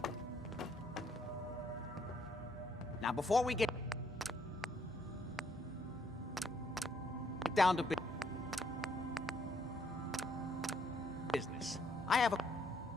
Now, before we get down to business, I have a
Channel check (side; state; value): both; normal; correlation 0.70